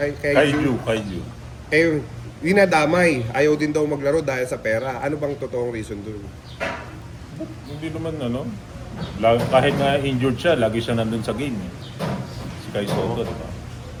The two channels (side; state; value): both; identical; correlation 1.00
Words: eh, dinadamay. Ayaw din daw maglaro dahil sa pera. Ano bang totoong reason doon? Hindi naman ano. Kahit nga injured siya, lagi siya nandun sa game eh. Si Kai Soto, diba?